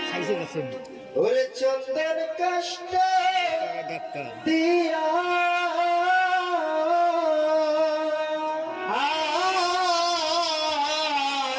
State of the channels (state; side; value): identical; both; correlation 1.00